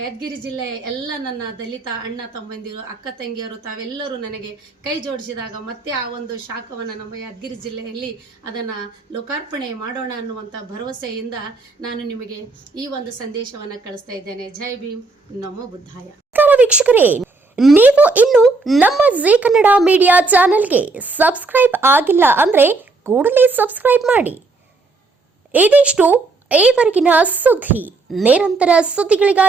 ಯಾದಗಿರಿ ಜಿಲ್ಲೆಯ ಎಲ್ಲ ನನ್ನ ದಲಿತ ಅಣ್ಣ ತಮ್ಮಂದಿರು, ಅಕ್ಕ ತಂಗಿಯರು ತಾವೆಲ್ಲರೂ ನನಗೆ ಕೈ ಜೋಡಿಸಿದಾಗ ಮತ್ತೆ ಆ ಶಾಖವನ್ನು ನಮ್ಮ ಯಾದಗಿರಿ ಜಿಲ್ಲೆಯಲ್ಲಿ ಅದನ್ನು ಲೋಕಾರ್ಪಣೆ ಮಾಡೋಣ ಅನ್ನುವಂಥ ಭರವಸೆಯಿಂದ ನಾನು ನಿಮಗೆ ಈ ಸಂದೇಶವನ್ನು ಕಳಿಸ್ತಾ ಇದ್ದೇನೆ. ಜೈ ಭೀಮ್, ನಮೋ ಬುದ್ಧಾಯ. ವೀಕ್ಷಕರೇ, ನೀವು ಇನ್ನು ನಮ್ಮ ಜೀ ಕನ್ನಡ ಮೀಡಿಯಾ ಚಾನೆಲ್ಗೆ ಸಬ್ಸ್ಕ್ರೈಬ್ ಆಗಿಲ್ಲ ಅಂದ್ರೆ ಕೂಡಲೇ ಸಬ್ಸ್ಕ್ರೈಬ್ ಮಾಡಿ. ಇದಿಷ್ಟು ಈವರೆಗಿನ ಸುದ್ದಿ. ನಿರಂತರ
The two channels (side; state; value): left; quieter; 3.7 dB